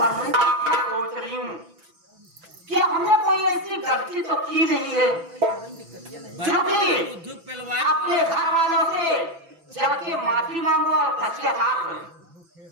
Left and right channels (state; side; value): late; left; 6.0 ms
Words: मैं क्या सोच रही हूँ कि हमने कोई ऐसी गलती तो की नहीं है जो कि अपने घर वालों से जाके माफी मांगो और पश्चाताप करो।